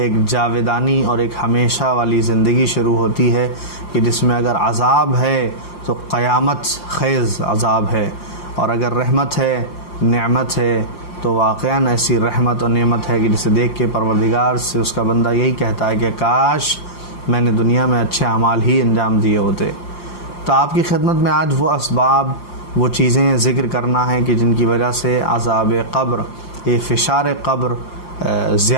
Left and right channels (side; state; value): right; late; 5.7 ms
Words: جاویدانی اور ایک ہمیشہ والی زندگی شروع ہوتی ہے کہ جس میں اگر عذاب ہے تو قیامت خیز عذاب ہے، اور اگر رحمت ہے، نعمت ہے تو واقعاً ایسی رحمت اور نعمت ہے کہ جسے دیکھ کے پروردگار سے اس کا بندہ یہی کہتا ہے کہ کاش میں نے دنیا میں اچھے اعمال ہی انجام دیے ہوتے۔ تو آپ کی خدمت میں آج وہ اسباب، وہ چیزیں ذکر کرنا ہے کہ جن کی وجہ سے عذاب قبر، یہ فشار قبر